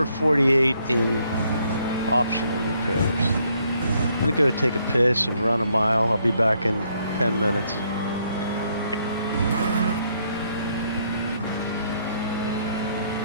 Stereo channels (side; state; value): both; inverted; correlation -0.71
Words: in optional repairs. I'm gonna go take a piss and run a mile. I'll be back in 10 minutes.